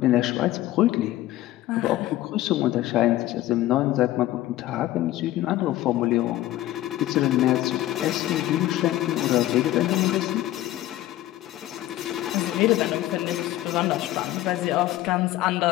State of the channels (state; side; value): quieter; right; 14.9 dB